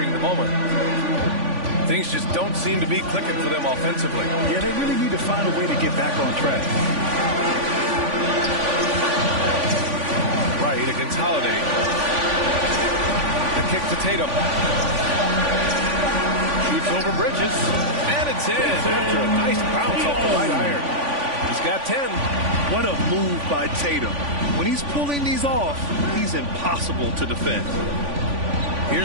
the moment. Things just don't seem to be clicking for them offensively. Yeah, they really need to find a way to get back on track. Right against Holiday. The kick to Tatum. Shoots over Bridges. And it's in after a nice bounce off the right iron. He's got 10. What a move by Tatum. When he's pulling these off, he's impossible to defend.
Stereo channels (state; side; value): late; left; 3.5 ms